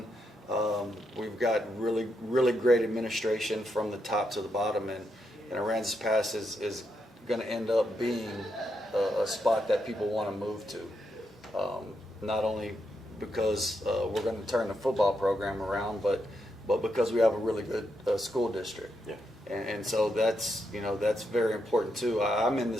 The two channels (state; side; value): normal; both; correlation 0.82